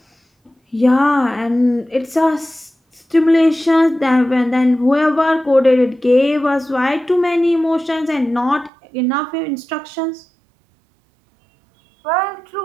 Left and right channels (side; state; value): left; drops out; at 8.7 s